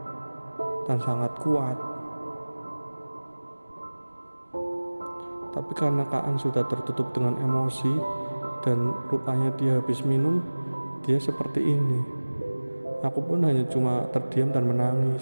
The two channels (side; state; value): both; inverted; correlation -1.00